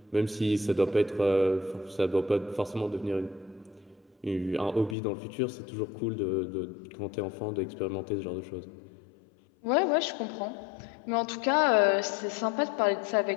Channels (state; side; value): drops out; right; at 5.0 s